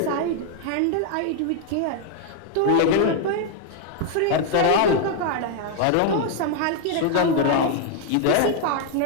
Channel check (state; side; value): different; both; correlation 0.00